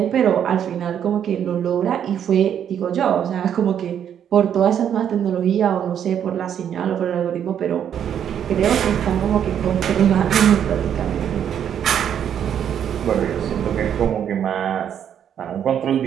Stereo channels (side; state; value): left; quieter; 9.1 dB